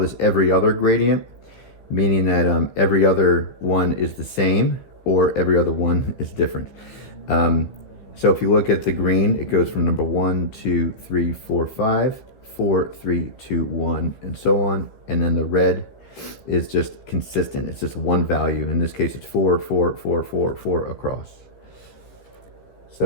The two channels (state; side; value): late; right; 15 ms